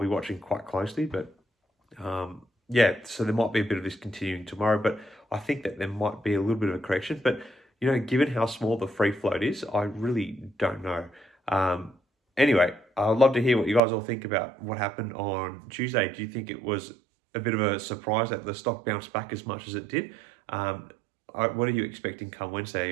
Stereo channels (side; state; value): left; drops out; at 13.8 s